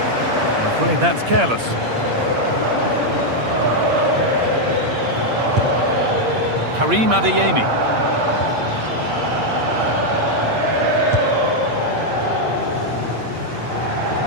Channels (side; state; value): left; late; 8.6 ms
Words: That's careless. Karim Adeyemi.